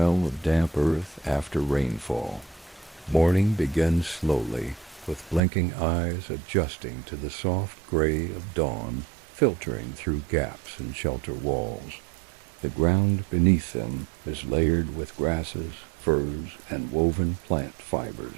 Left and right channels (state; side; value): drops out; left; at 5.4 s